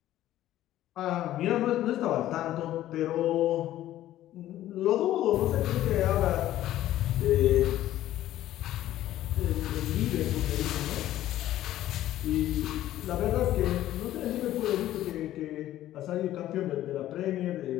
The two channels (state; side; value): quieter; right; 13.6 dB